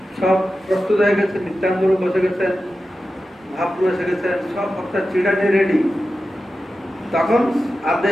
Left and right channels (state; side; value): normal; both; correlation 0.92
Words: সব প্রস্তুত হয়ে গেছে, নিত্যানন্দ প্রভু বসে গেছেন, মহাপ্রভু এসে গেছেন, সব ভক্তের চিড়া নিয়ে রেডি। তখন